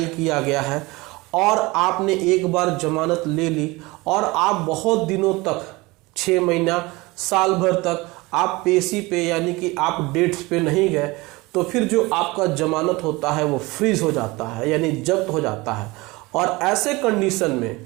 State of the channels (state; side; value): quieter; left; 22.7 dB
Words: किया गया है और आपने एक बार जमानत ले ली और आप बहुत दिनों तक 6 महीना साल भर तक आप पेशी पे यानी कि आप डेट्स पे नहीं गए, तो फिर जो आपका जमानत होता है वो फ्रीज हो जाता है यानी जब्त हो जाता है। और ऐसे कंडीशन में